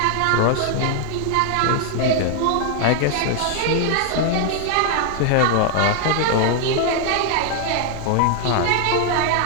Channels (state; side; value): different; both; correlation 0.00